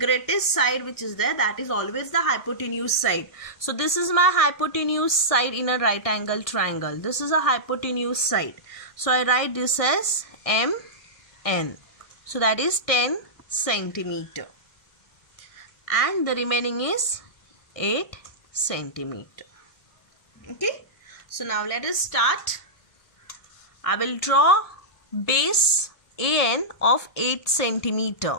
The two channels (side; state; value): right; late; 1.6 ms